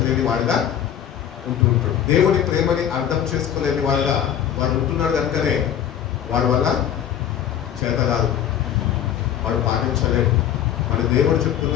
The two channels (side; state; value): right; quieter; 9.8 dB